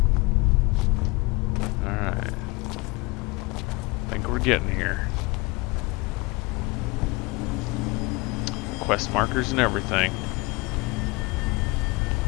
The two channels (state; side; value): quieter; right; 24.7 dB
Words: Alright. Think we're getting here. Quest markers and everything.